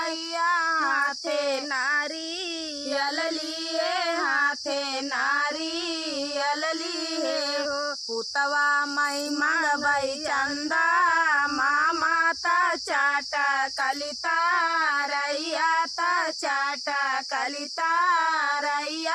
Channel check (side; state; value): both; identical; correlation 1.00